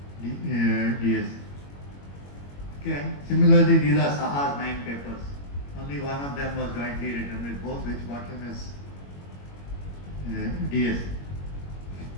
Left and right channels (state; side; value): late; right; 21 ms